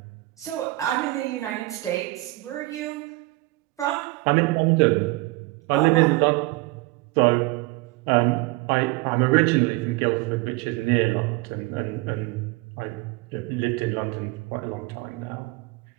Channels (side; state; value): left; quieter; 21.3 dB